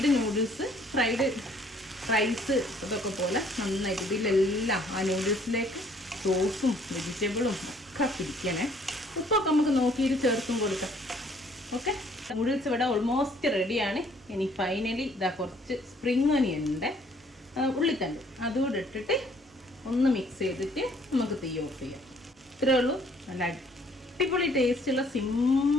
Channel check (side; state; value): both; normal; correlation 0.61